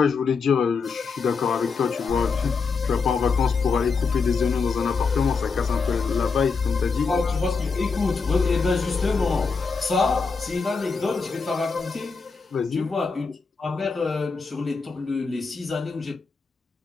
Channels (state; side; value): quieter; right; 4.8 dB